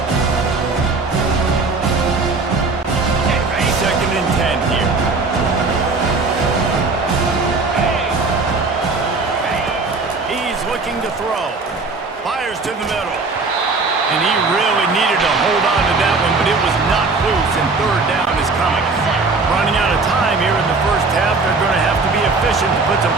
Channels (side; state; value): left; quieter; 3.9 dB